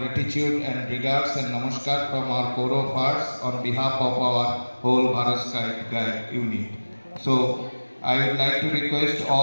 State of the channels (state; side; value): inverted; both; correlation -1.00